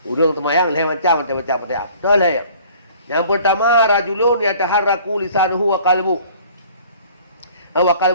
Urang semayang lain macam baca Fatihah. Betul ya? Yang pertama, rajulun yataharraku lisanuhu wa qalbuhu. Wa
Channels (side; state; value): both; inverted; correlation -0.52